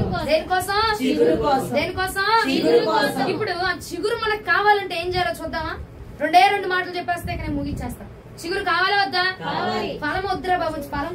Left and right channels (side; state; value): both; identical; correlation 1.00